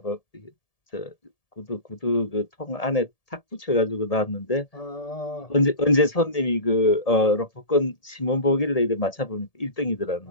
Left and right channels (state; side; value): late; right; 1.7 ms